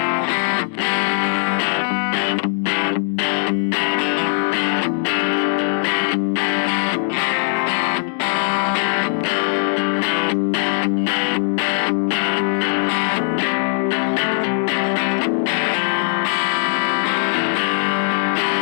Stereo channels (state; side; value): silent; right; 66 dB below the other